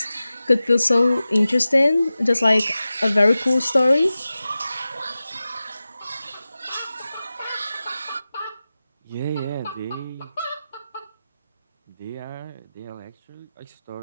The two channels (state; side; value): inverted; both; correlation -0.95